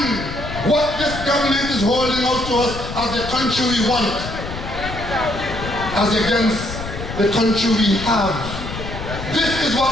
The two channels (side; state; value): left; noise; rumble, 8 dB below the sound